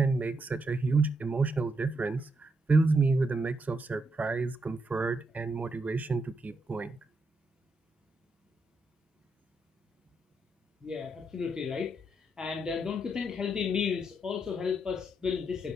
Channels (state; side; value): normal; both; correlation 0.80